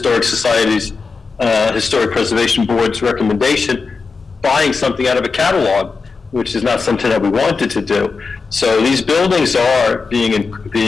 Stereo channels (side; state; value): right; quieter; 4.6 dB